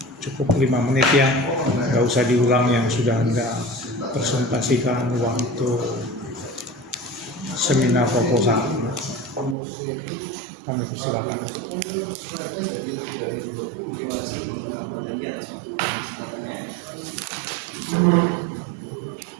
cukup 5 menit ya, nggak usah diulang yang sudah Anda presentasikan waktu seminar proposal. Kami persilakan.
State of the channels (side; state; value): left; drops out; at 9.6 s